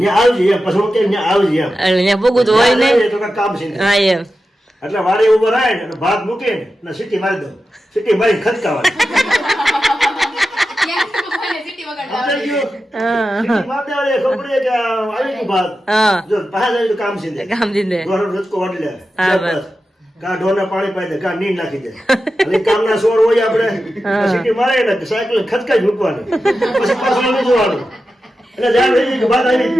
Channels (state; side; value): normal; both; correlation 0.92